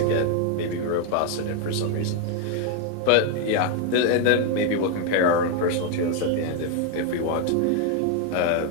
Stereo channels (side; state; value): both; different; correlation 0.01